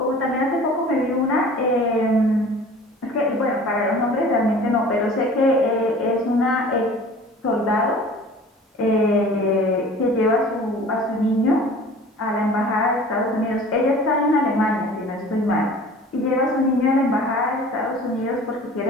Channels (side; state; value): both; normal; correlation 0.44